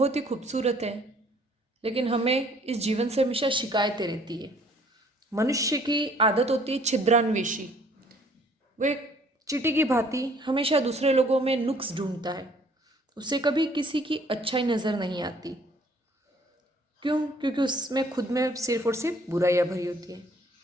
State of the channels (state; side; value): normal; both; correlation 0.59